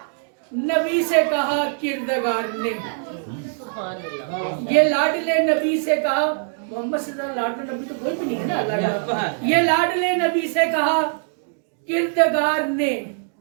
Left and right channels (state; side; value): silent; left; digital silence